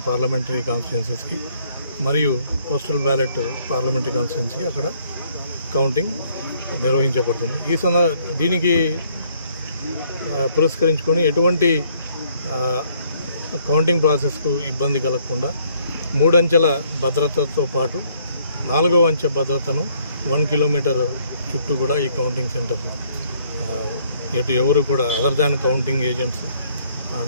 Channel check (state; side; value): inverted; both; correlation -0.65